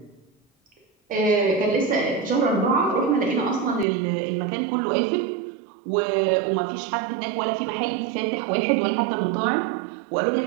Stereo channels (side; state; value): left; drops out; at 3.9 s